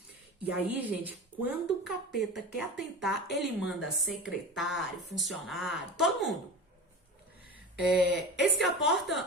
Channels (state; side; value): normal; both; correlation 0.31